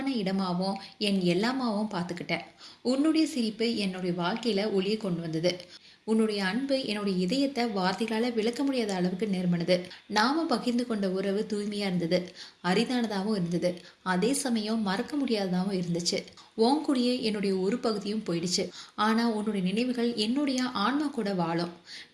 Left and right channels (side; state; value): both; identical; correlation 1.00